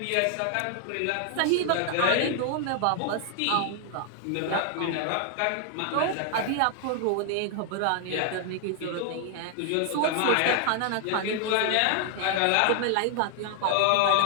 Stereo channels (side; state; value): both; different; correlation 0.00